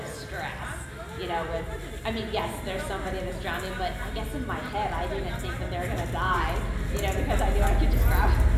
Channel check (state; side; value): identical; both; correlation 1.00